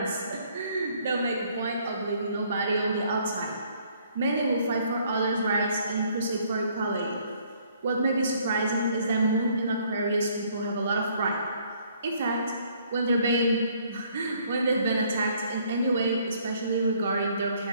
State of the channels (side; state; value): both; inverted; correlation -0.63